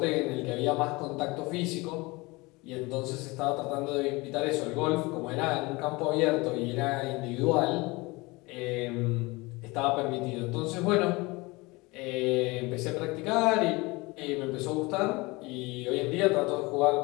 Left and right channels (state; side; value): quieter; right; 23.9 dB